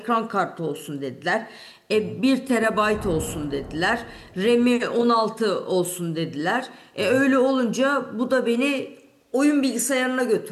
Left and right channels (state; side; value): identical; both; correlation 1.00